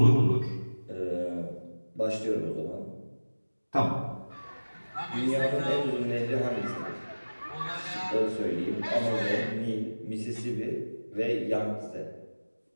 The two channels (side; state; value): both; inverted; correlation -1.00